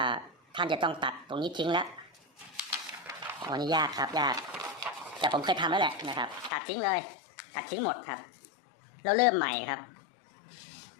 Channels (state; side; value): drops out; right; at 6.5 s